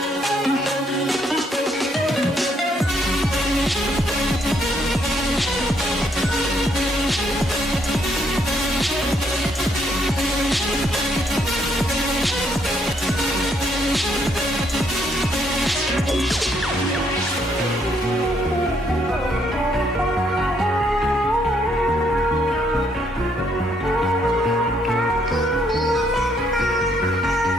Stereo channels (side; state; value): both; normal; correlation 0.71